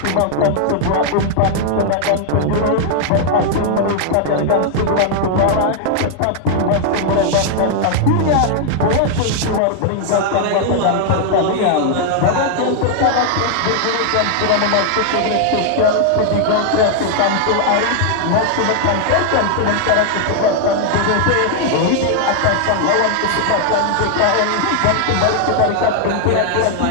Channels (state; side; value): different; both; correlation 0.00